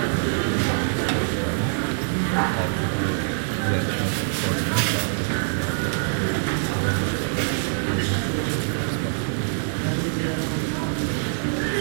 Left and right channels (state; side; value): silent; left; digital silence